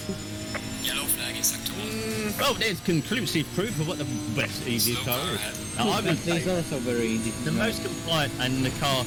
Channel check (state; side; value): identical; both; correlation 1.00